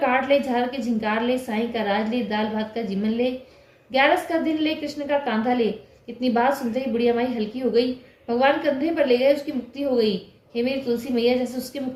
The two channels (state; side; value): identical; both; correlation 1.00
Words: ले, झाल के झिंकार ले, साई का राज ले, दाल भात का जीवन ले, 11 का दिन ले, कृष्ण का कांधा ले। इतनी बात सुनते ही बुढ़िया माई हल्की हो गई। भगवान कंधे पर ले गए, उसकी मुक्ति हो गई। हे मेरी तुलसी मैया, जैसे उसकी